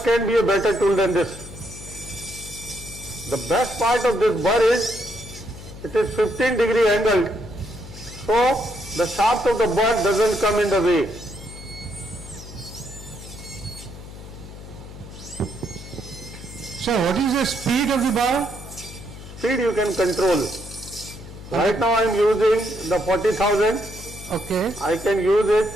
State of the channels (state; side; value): noise; left; hum, 14 dB below the sound